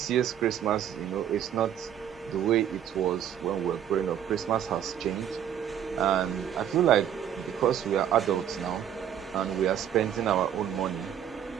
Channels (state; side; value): quieter; left; 9.7 dB